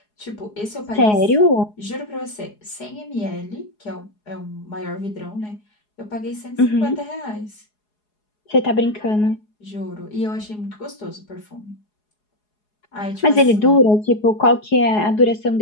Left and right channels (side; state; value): right; late; 4.8 ms